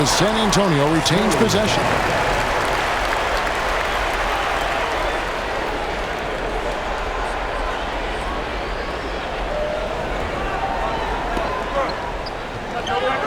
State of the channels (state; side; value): identical; both; correlation 1.00